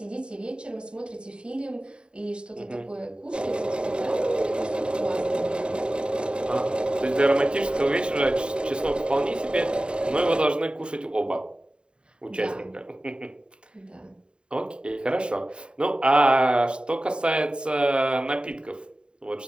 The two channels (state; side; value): late; left; 0.051 ms